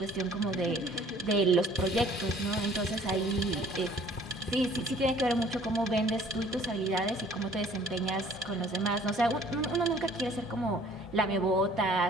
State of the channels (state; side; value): normal; both; correlation 0.54